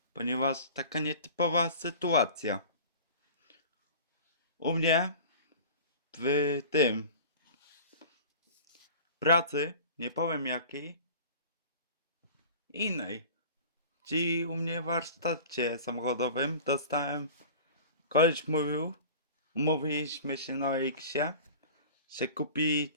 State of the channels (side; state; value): both; inverted; correlation -0.40